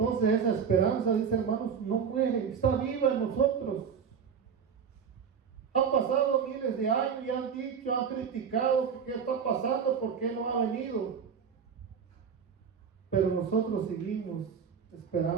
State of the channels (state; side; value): quieter; left; 6.9 dB